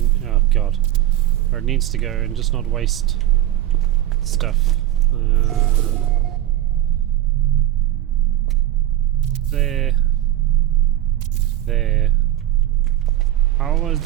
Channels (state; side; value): quieter; left; 13.3 dB